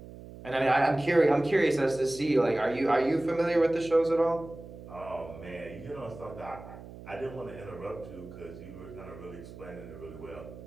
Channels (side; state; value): right; noise; hum, 15 dB below the sound